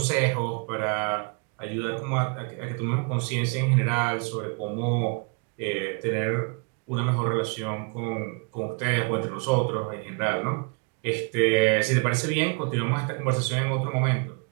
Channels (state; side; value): quieter; left; 35.7 dB